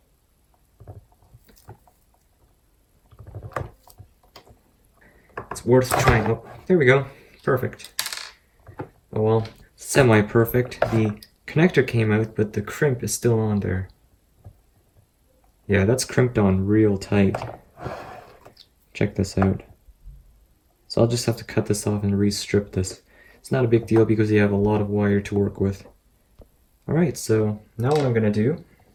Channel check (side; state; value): both; identical; correlation 1.00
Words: It's worth trying. Oh, there we go. Perfect. Oh well, semi-perfect. The connector came out, but the crimp is still on there. Yeah, that's crimped on real tight. Check this out. So I'll just have to cut this off and re-strip this. It's not a big deal because you have a lot of wire to work with. Alright, so now what I'm going to do,